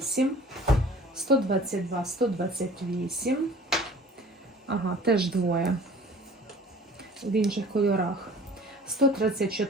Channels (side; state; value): both; normal; correlation 0.47